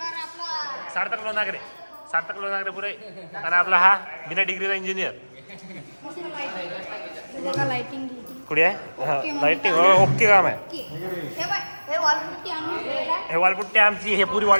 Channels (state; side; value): inverted; both; correlation -1.00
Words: सार्थक लोणागरे पुरे. आणि आपला हा बिना डिग्रीचा इंजिनियर कुठे आहे लाइटिंग ओके काम आहे. हे वॉलपुट्टी आमची हे पुरी